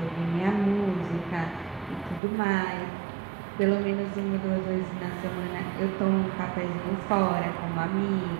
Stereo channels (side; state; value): left; drops out; at 2.2 s